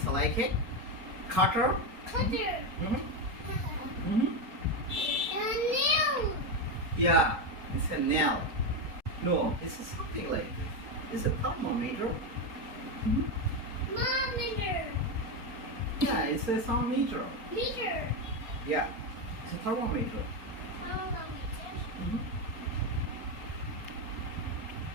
like a cutter. Cutter. A nail. Yeah, it's a nail. No, it's something like this. It's a thermometer. Thermometer. Yeah, it's a thermometer. Meter. Yeah, it's a thermometer. Thermometer.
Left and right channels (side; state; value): left; late; 4.1 ms